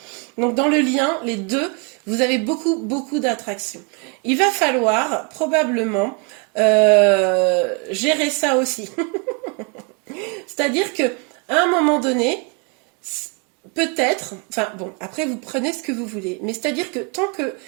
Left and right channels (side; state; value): left; quieter; 32.6 dB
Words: Donc, dans le lien, les deux, vous avez beaucoup d'attraction. Il va falloir probablement gérer ça aussi. C'est-à-dire que à un moment donné, peut-être, enfin bon, après vous prenez ce que vous voulez, mais c'est-à-dire que tant que